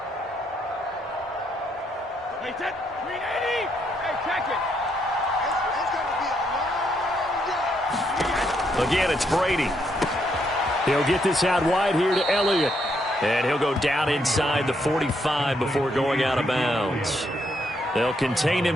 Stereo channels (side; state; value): both; normal; correlation 0.75